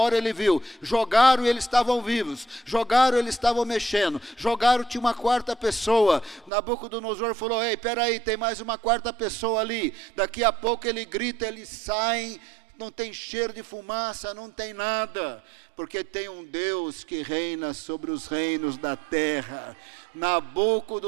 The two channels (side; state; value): left; drops out; at 6.5 s